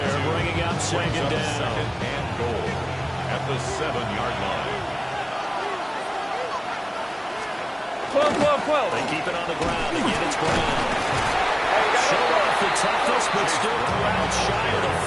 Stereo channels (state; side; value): identical; both; correlation 1.00